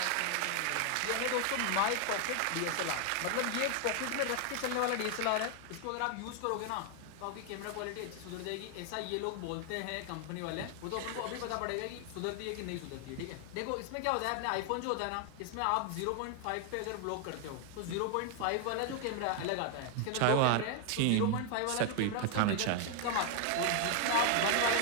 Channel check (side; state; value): both; different; correlation 0.00